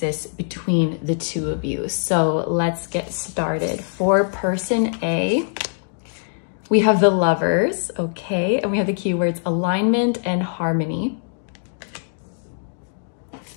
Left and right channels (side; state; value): right; silent; digital silence